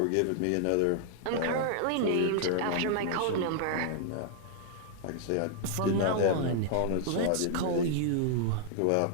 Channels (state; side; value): different; both; correlation -0.01